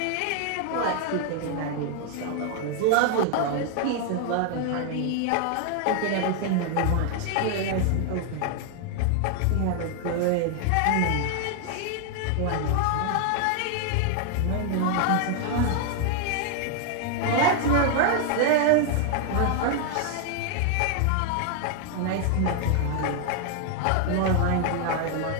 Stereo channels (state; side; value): different; both; correlation 0.00